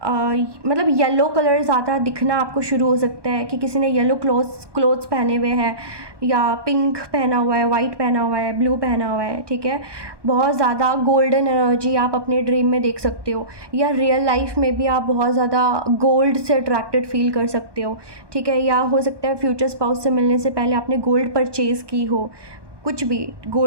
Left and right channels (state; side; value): late; left; 1.2 ms